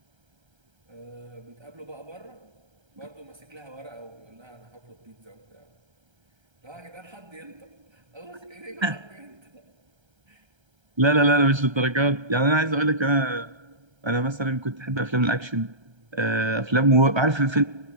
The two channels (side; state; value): left; late; 1.3 ms